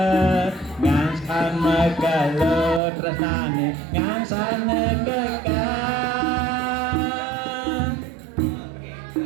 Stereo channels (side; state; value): left; drops out; at 2.8 s